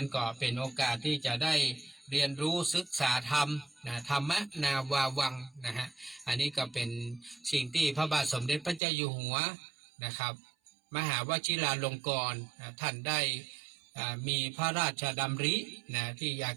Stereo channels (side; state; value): left; drops out; at 8.8 s